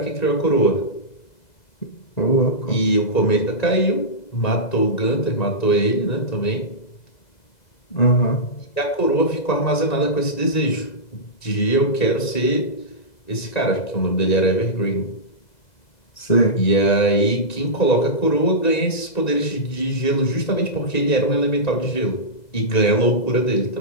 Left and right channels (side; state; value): right; late; 1.9 ms